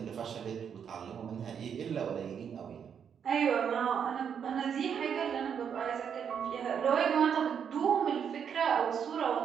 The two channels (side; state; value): left; quieter; 7.6 dB